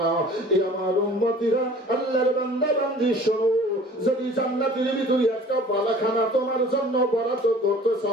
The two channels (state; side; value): normal; both; correlation 0.47